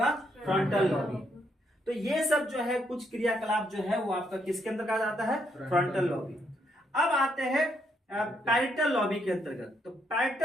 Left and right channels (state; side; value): normal; both; correlation 0.75